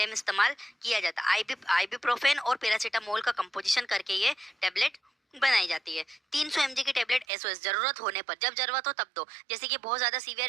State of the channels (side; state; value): left; drops out; at 7.2 s